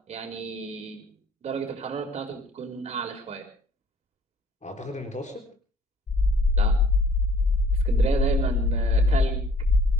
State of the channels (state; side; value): normal; both; correlation 0.56